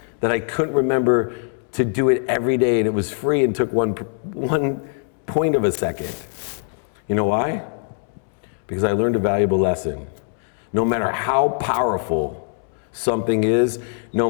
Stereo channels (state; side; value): silent; right; 64 dB below the other